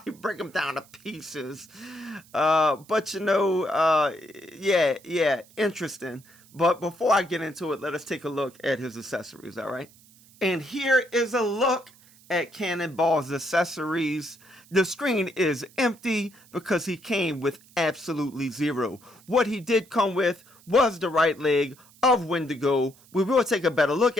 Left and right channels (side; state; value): right; noise; hiss, 27 dB below the sound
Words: break him down to pieces, but you know, yeah, interesting. But before I get into it, let us take a look at his accessories, all right? And here is a look at Cannonball's accessories. The screen is empty because he came with absolutely zero. What he did come with was the right leg of Wendigo. We will take a better look